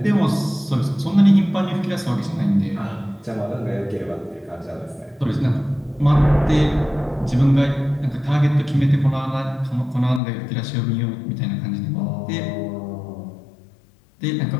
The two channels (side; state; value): right; drops out; at 10.2 s